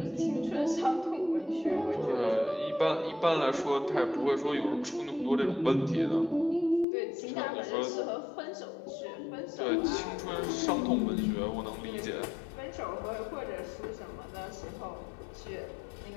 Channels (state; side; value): drops out; right; at 6.9 s